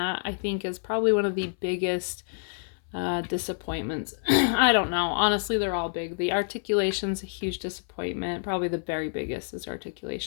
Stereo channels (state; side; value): silent; right; 59 dB below the other